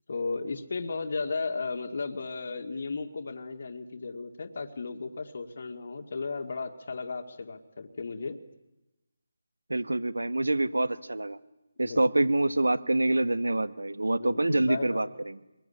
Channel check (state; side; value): inverted; both; correlation -0.96